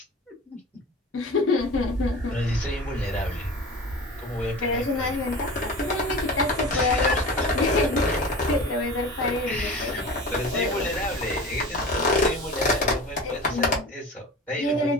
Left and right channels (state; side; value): normal; both; correlation 0.35